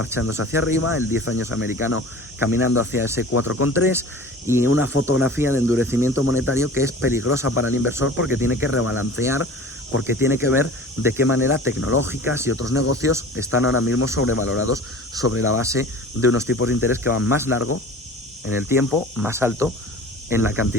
hacia arriba, el 10 años americano caminando hacia ese 4,3 y una fotografía de endurecimiento monetario que es peligrosa para el inversor porque tiene que rebalancear, porque tiene que ver de qué manera tecnológicas y otros negocios están ahora mismo sobrevalorados sobre la base de unos tipos de interés que van más largo en el tiempo, más alto en la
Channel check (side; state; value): both; normal; correlation 0.40